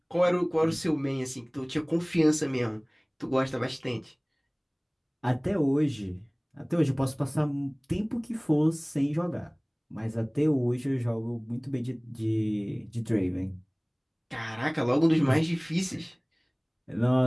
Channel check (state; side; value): identical; both; correlation 1.00